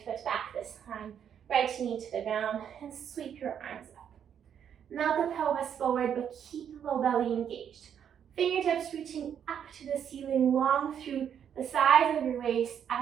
foot back this time. Right knee to the ground and sweep your arms up. Melt the pelvis forward, but keep the low belly engaged. Fingertips reaching up to the ceiling, long through the sides of your waist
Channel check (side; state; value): left; quieter; 8.6 dB